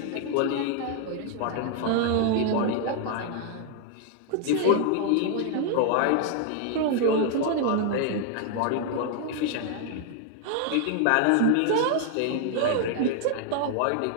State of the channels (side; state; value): both; different; correlation 0.00